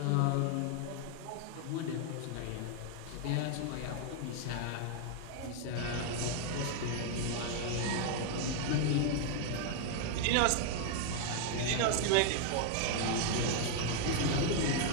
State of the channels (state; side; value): different; both; correlation 0.00